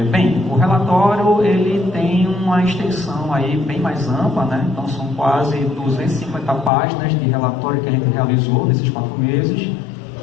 Bem, o relatório ele tem uma extensão aí bem mais ampla, né? Então são quase 250 páginas de relatório que a gente realizou nesses 4 meses,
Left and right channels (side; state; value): right; drops out; at 6.7 s